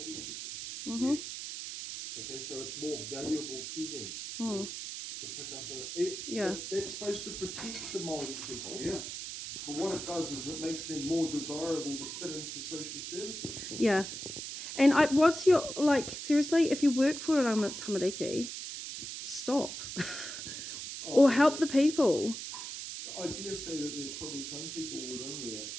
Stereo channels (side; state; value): right; noise; hiss, 7 dB below the sound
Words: people. Mm-hmm. Yes. Okay, so it's more valuable to them to pick up and that's supposed to protect the Māori people. Yeah. But what it does is it makes them more desirable to fit into social services. Yeah. And what's your, like, seriously, if you work for a tamariki, stop. Or help the people. I dare say that there's probably some people within there